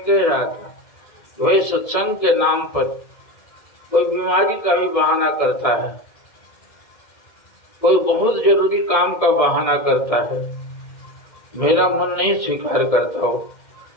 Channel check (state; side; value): late; right; 1.7 ms